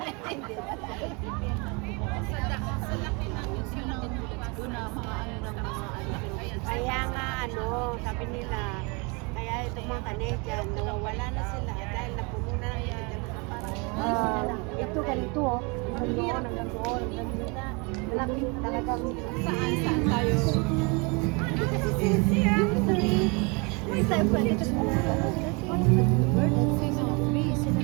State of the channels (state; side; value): quieter; left; 30.3 dB